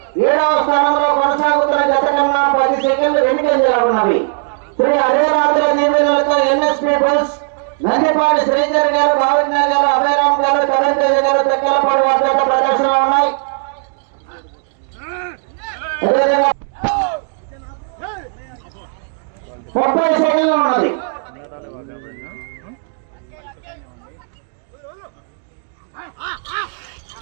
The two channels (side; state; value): left; silent; 69 dB below the other